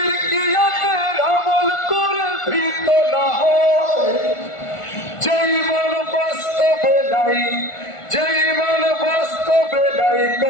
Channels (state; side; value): late; right; 1.5 ms